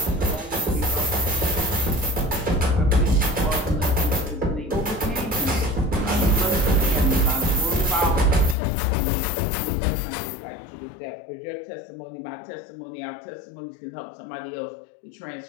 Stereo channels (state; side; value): drops out; right; at 8.6 s